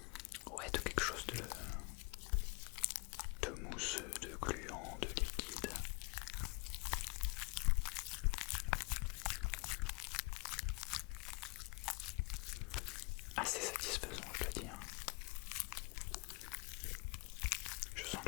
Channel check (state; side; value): quieter; right; 29.0 dB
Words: Ouais, de quelque chose de mousse, de gluant, de liquide. Assez satisfaisant, je dois dire. Je sens